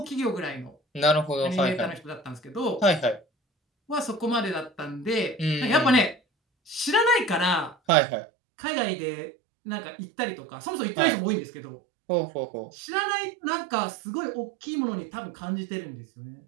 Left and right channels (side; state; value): left; drops out; at 7.8 s